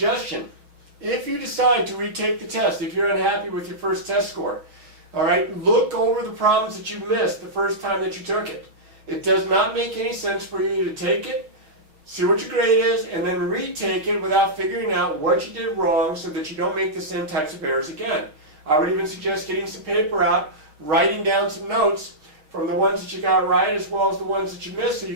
if you decide to retake the test, if you're unhappy with your first test score, all right, look over the problems that you missed the first time that you took it. It does not make any sense for you to take it, see what your grade is, and then retake it without figuring out what you did wrong so that you don't make the same types of errors again. I would even suggest getting some paper out, writing down some notes from the ones that you got right as well as the ones that you missed so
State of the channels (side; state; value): left; late; 6.5 ms